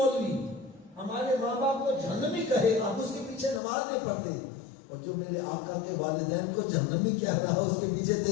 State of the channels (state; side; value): drops out; right; at 3.6 s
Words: ہمارے ماں باپ کو جہنمی کہے آپ اس کے پیچھے نماز نہیں پڑھتے اور جو میرے آقا کے والدین کو جہنمی کہہ رہا ہے اس کے پیچھے